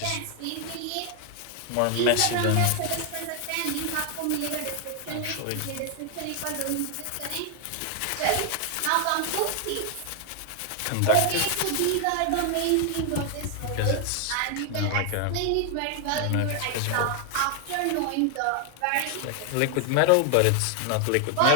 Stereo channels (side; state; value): both; different; correlation 0.00